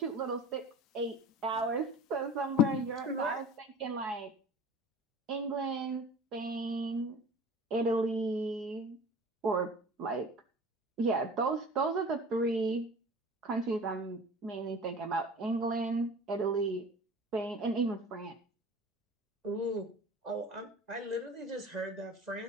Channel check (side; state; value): both; normal; correlation 0.40